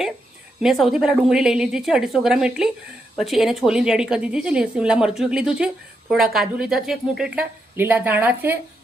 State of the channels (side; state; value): both; normal; correlation 0.82